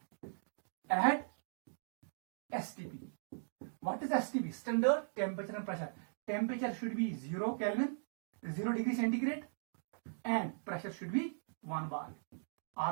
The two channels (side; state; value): left; silent; digital silence